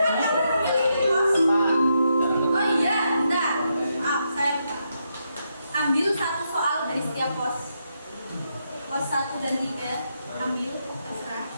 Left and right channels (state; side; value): inverted; both; correlation -0.82